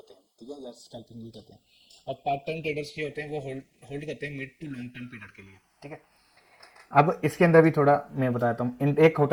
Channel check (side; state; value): both; identical; correlation 1.00